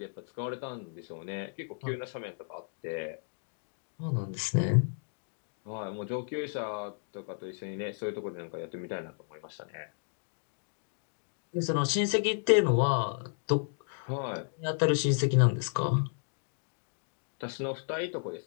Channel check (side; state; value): right; silent; digital silence